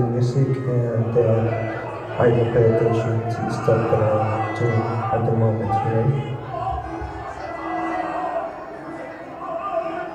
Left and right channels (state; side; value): identical; both; correlation 1.00